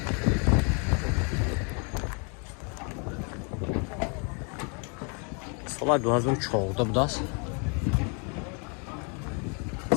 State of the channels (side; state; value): right; quieter; 36.3 dB